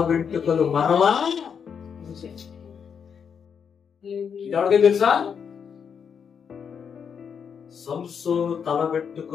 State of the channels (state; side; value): quieter; right; 7.0 dB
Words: వెంట్రుకలు మరలా. ఎవరికీ తెలుసా? సంసోను తల